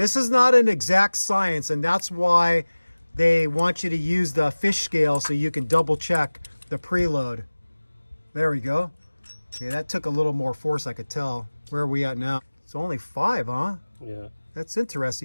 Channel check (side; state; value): both; inverted; correlation -1.00